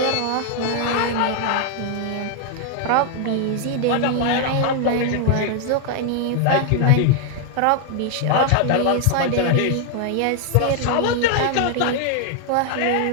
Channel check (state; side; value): different; both; correlation 0.00